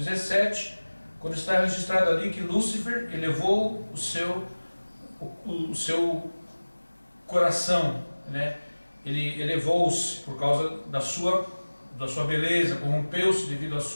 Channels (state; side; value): inverted; both; correlation -1.00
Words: quando está registrado ali que Lúcifer elevou o seu coração, ele elevou-se por causa da sua beleza, corrompeu-se devido à